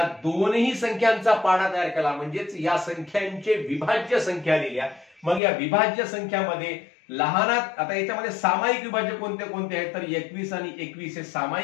दोन्ही संख्यांचा पाडा तयार केला म्हणजेच या संख्यांचे विभाज्य संख्या लिहिल्या. मग या विभाज्य संख्यामध्ये लहानात आता याच्यामध्ये सामायिक विभाज्य कोणते कोणते आहेत, तर 21 आणि 21 हे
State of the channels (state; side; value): drops out; right; at 5.4 s